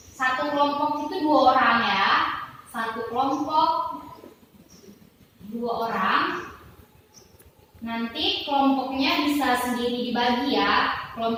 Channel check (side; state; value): both; identical; correlation 1.00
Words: satu kelompok itu 2 orang ya. Satu kelompok 2 orang. Nanti kelompoknya bisa sendiri dibagi ya.